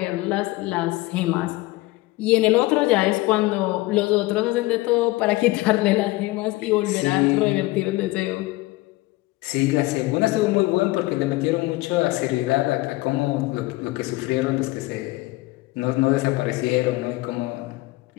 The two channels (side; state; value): right; quieter; 20.2 dB